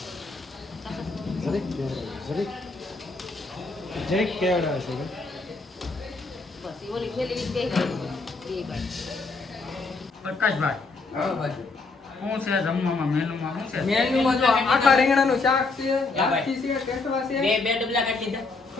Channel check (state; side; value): quieter; right; 3.8 dB